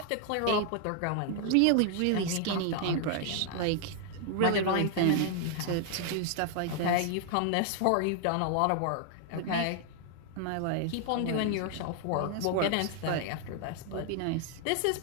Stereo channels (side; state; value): both; different; correlation 0.00